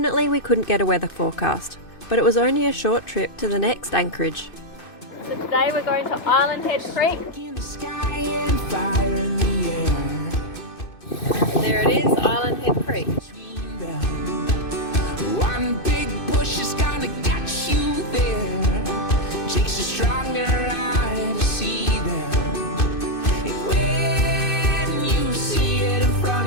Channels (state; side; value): late; right; 2.6 ms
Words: we couldn't get a weather forecast, but it was only a short trip to the next anchorage. Today we're going to Island Head Creek. In the sky and fire in the air. There it is, Island Head Creek. One big bush is gonna get you there. Takes a stronger eye to see them. And when you see it in